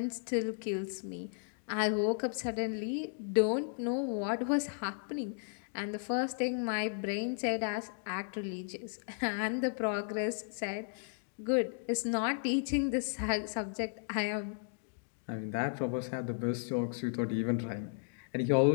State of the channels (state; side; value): silent; right; digital silence